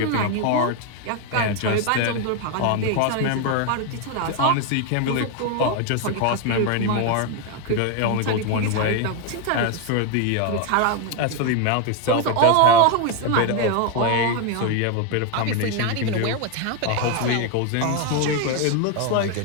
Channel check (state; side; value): different; both; correlation 0.01